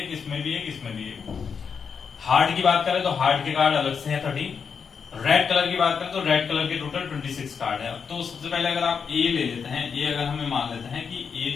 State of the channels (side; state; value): right; quieter; 6.3 dB